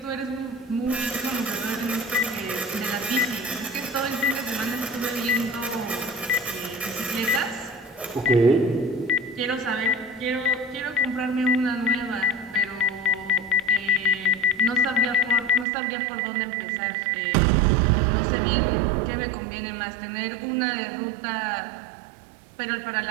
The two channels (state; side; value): drops out; left; at 15.7 s